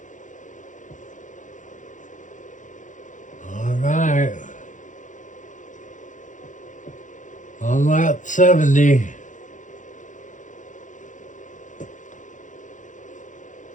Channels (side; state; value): right; late; 0.37 ms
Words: All right. On lap 70.